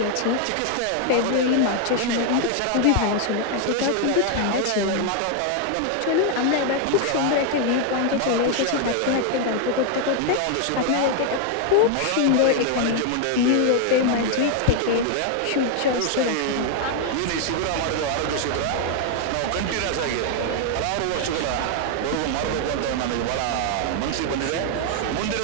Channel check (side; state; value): both; different; correlation 0.00